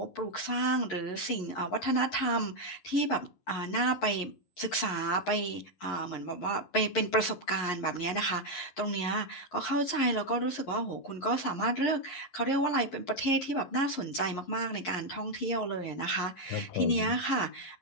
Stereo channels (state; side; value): late; right; 11 ms